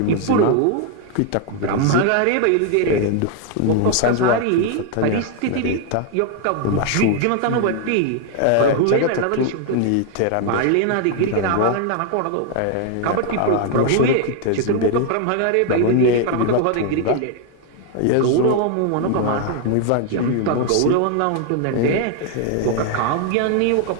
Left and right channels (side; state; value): both; different; correlation 0.00